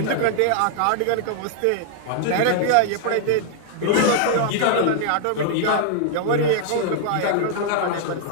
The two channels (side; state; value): both; different; correlation -0.01